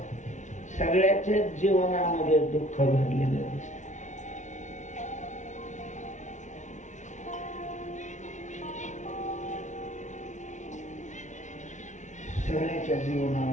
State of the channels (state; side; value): late; right; 0.35 ms